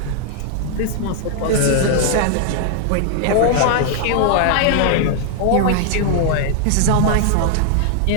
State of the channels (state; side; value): different; both; correlation 0.00